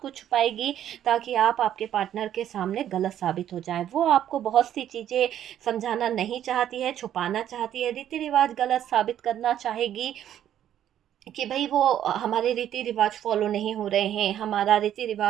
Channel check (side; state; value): left; quieter; 10.8 dB